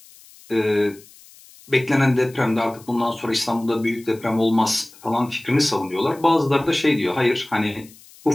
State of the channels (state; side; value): noise; left; hiss, 24 dB below the sound